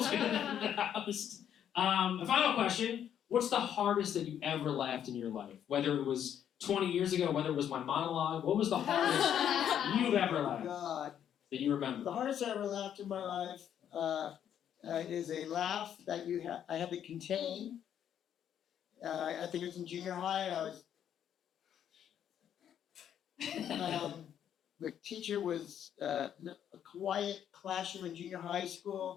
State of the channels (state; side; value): quieter; right; 9.5 dB